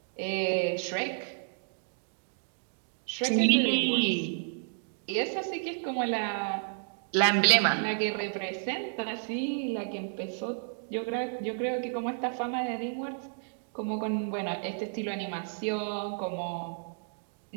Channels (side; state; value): left; silent; digital silence